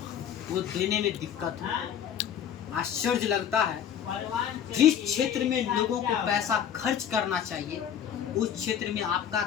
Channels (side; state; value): right; quieter; 9.1 dB